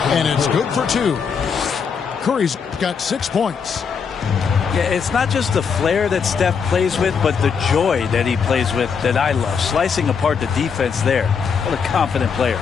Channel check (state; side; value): quieter; right; 6.2 dB